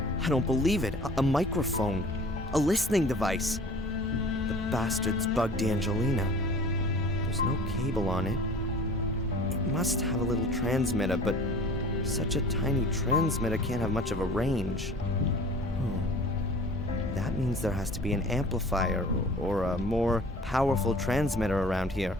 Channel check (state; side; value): normal; both; correlation 0.45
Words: I don't believe it. A microphone. A listening device. The bastards bugged Angelina. There's no cable on it. It must have a little transmitter, but such a tiny transmitter can't have much of a range. That means there has to be an amplifier or a more powerful transmitter around here.